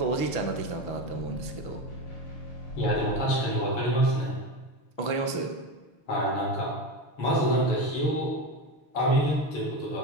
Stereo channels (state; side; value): late; right; 6.1 ms